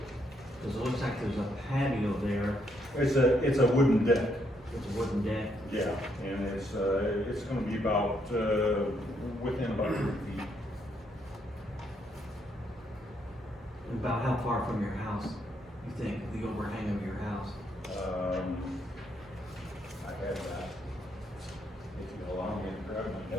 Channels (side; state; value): both; normal; correlation 0.74